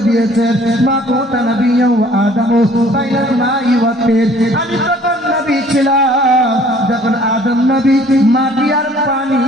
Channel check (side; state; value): both; normal; correlation 0.55